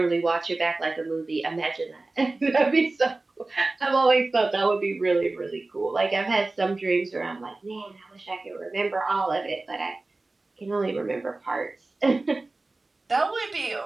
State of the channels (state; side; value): quieter; left; 3.2 dB